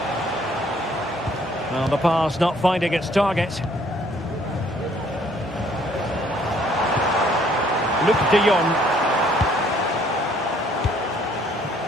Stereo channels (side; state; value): both; normal; correlation 0.62